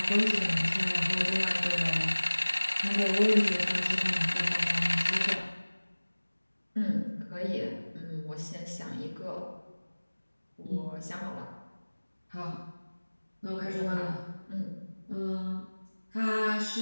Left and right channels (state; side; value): inverted; both; correlation -1.00